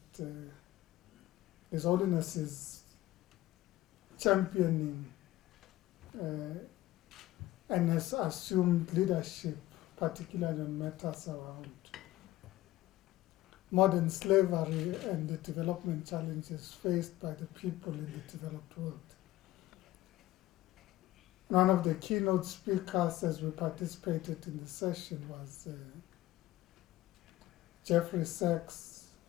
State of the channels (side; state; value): right; quieter; 16.0 dB